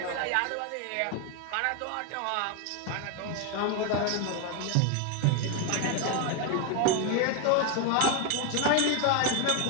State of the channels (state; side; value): different; both; correlation 0.01